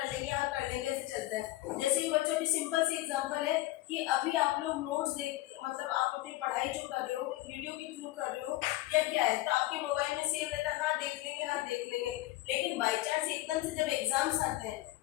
लेंगे, हाँ कर लेंगे, ऐसे चलता है। जैसे कि बच्चों की सिंपल सी एग्जांपल है कि अभी आप लोग नोट्स देख, मतलब आप अपनी पढ़ाई जो कर रहे हो वीडियो के थ्रू कर रहे हो या क्या है, तो आपके मोबाइल में सेव रहता है, हाँ देख लेंगे, हाँ देख लेंगे। लेकिन बाई चांस एकदम से जब एग्जाम्स आते हैं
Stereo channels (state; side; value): quieter; right; 17.4 dB